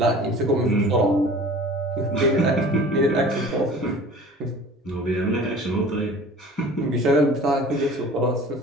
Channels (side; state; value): both; normal; correlation 0.44